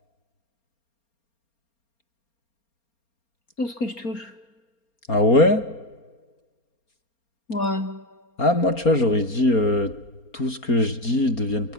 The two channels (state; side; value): late; right; 4.3 ms